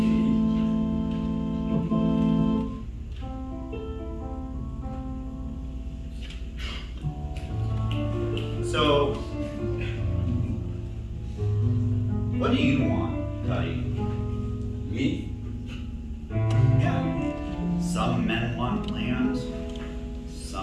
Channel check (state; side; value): identical; both; correlation 1.00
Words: What do you want, Cuddy? Me? Yeah. Some men want land.